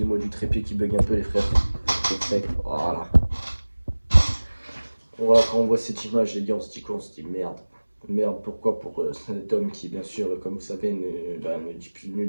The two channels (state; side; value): inverted; both; correlation -1.00